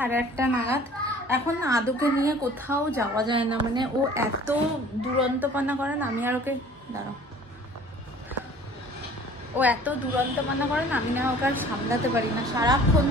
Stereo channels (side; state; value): both; normal; correlation 0.49